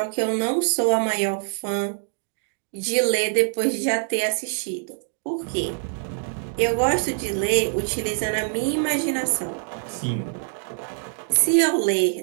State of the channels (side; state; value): left; silent; digital silence